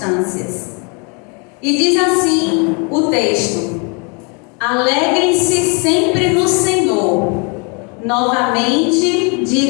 E diz assim o texto: alegrem-se sempre no Senhor. Novamente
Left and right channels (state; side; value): quieter; right; 34.0 dB